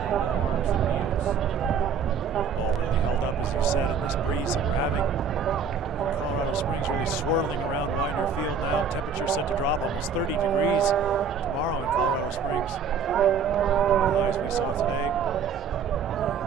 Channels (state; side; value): quieter; left; 6.0 dB